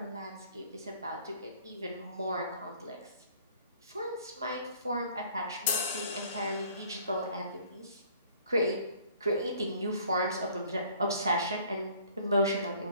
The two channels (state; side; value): inverted; both; correlation -0.55